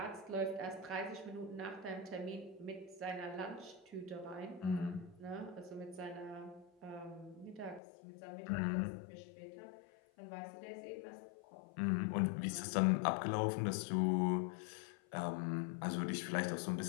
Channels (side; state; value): right; drops out; at 7.8 s